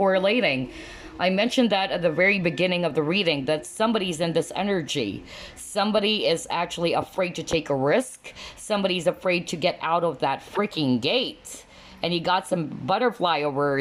I mentioned that at the very beginning of the reading, that somebody's in this energy. Somebody is actually afraid to take a risk. Somebody's afraid to get out of that freaking gate. And you got some butterfly over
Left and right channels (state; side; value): identical; both; correlation 1.00